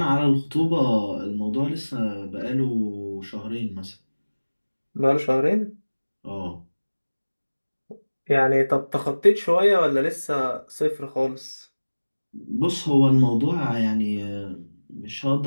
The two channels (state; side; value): inverted; both; correlation -1.00